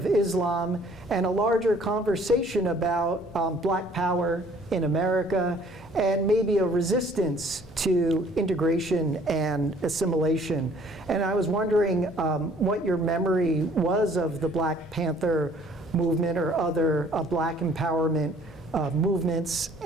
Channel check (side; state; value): both; normal; correlation 0.57